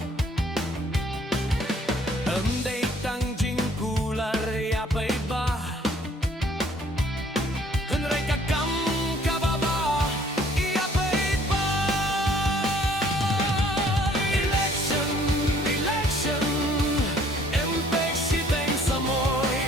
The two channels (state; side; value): normal; both; correlation 0.59